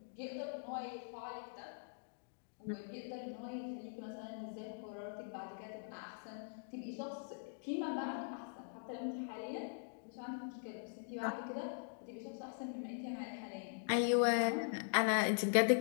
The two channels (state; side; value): silent; right; digital silence